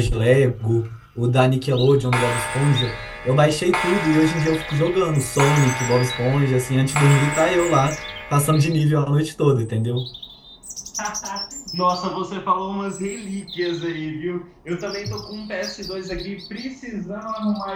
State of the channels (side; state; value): both; identical; correlation 1.00